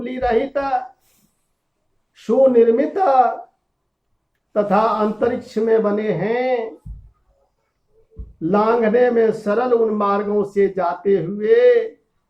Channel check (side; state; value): both; identical; correlation 1.00